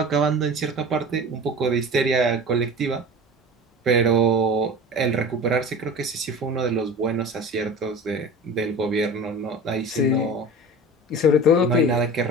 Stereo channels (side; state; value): both; normal; correlation 0.35